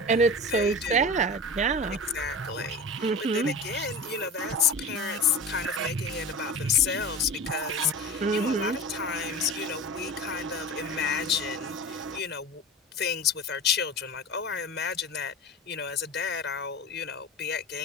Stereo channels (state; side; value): normal; both; correlation 0.31